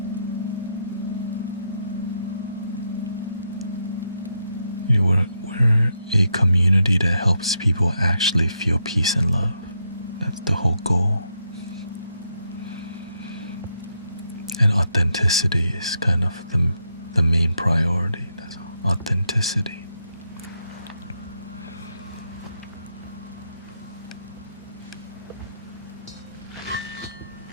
We're a community that helps people actually feel peace and love. That's the whole goal. And authenticity is kind of the main priority. That's authenticity.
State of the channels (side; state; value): both; inverted; correlation -0.80